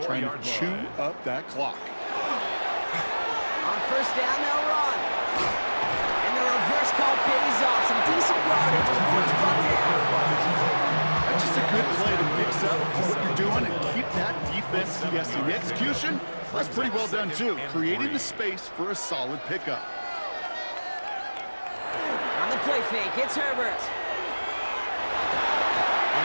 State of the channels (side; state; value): both; inverted; correlation -1.00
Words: trying to chew up that clock. On first down, they'll run. And the reverse call pays off. Some decent yardage before it's brought down. That's just a good play to mix up what you're doing and keep that defense guessing. The execution, that's pretty well done too, creating the space for a solid pickup. On the play fake, it's Herbert.